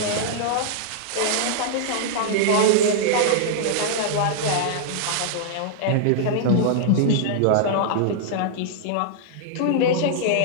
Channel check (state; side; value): different; both; correlation -0.01